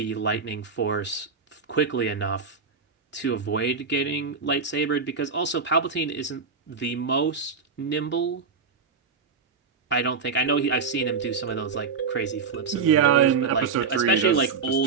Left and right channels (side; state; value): left; quieter; 5.2 dB